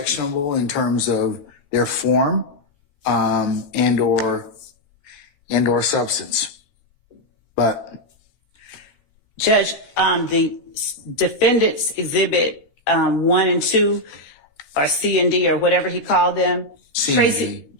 in terms of their form and or substance. But Judge, the defendants exhibit 1 and 2, or C and D, or whatever he called them.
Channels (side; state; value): right; late; 15 ms